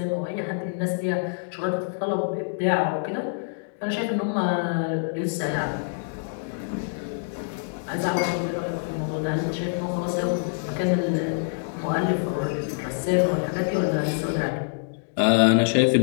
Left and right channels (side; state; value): right; silent; digital silence